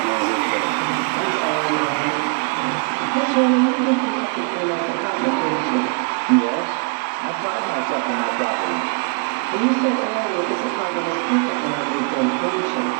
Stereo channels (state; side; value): quieter; left; 36.0 dB